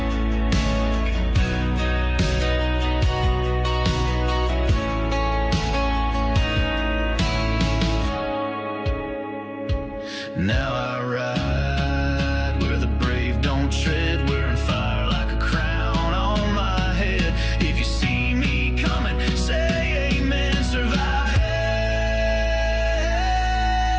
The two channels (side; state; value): both; identical; correlation 1.00